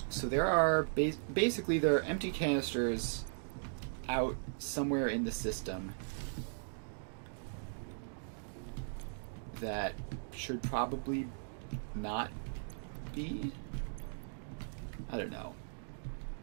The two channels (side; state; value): left; silent; digital silence